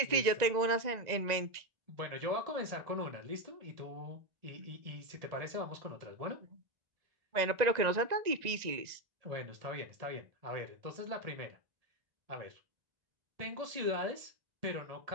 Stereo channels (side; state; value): left; late; 1.9 ms